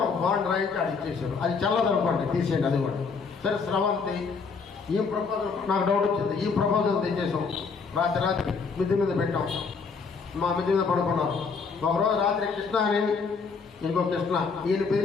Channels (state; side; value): quieter; right; 5.0 dB